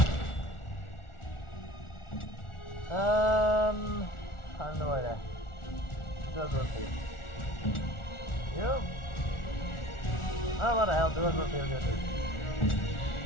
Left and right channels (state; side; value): late; right; 1.4 ms